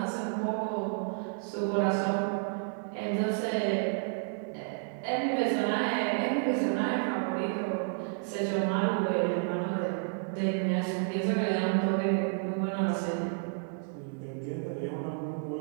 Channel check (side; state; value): left; silent; 57 dB below the other